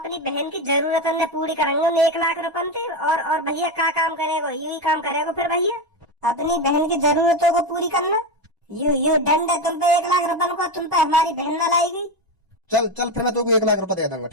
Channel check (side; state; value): both; normal; correlation 0.15